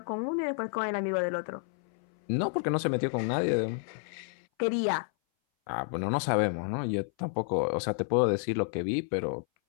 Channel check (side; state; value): right; silent; 58 dB below the other